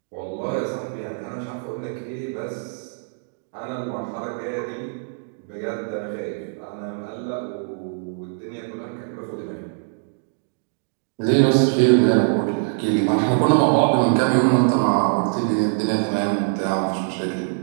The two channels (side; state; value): left; silent; digital silence